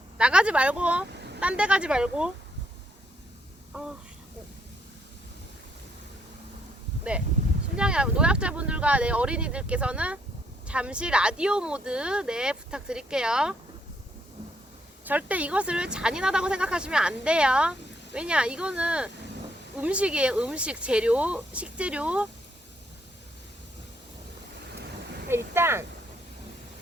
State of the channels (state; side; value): normal; both; correlation 0.73